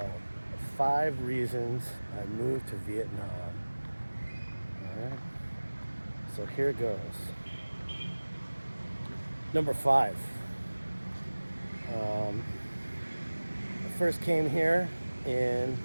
5 Reasons I Moved to Vietnam. Alright, so here it goes. Number 5. I first came here in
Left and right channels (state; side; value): inverted; both; correlation -1.00